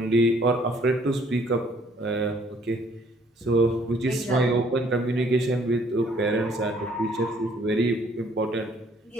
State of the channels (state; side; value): normal; both; correlation 0.62